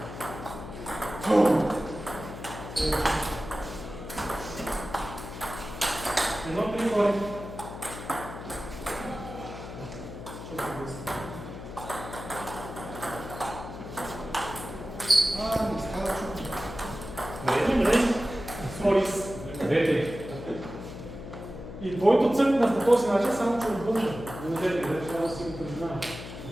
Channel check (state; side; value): noise; left; hum, 11 dB below the sound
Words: Едно три гори. Не става чуто. Мрежи. Сорис. И твоето цъкна по този начин, само че отвън. Не трябва да си го признавам.